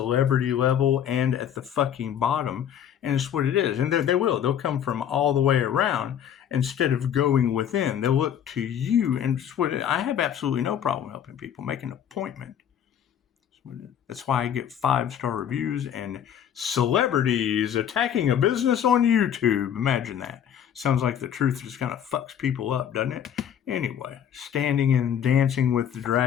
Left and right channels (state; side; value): quieter; right; 9.3 dB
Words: level and at the fucking bottom, and it's what it is. And they'll come from all the way around instead of going within. They'll look to you, and it's what I have absolutely no problem helping people make an appointment. That's why I get 5-star reviews and celebrities attacking a business on YouTube. Imagine that. Sounds like the truth just kind of fucks people up, doesn't it? Anyway, standing and dancing with the